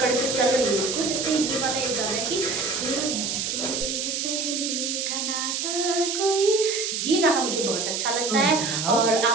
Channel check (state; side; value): noise; right; hiss, 1 dB below the sound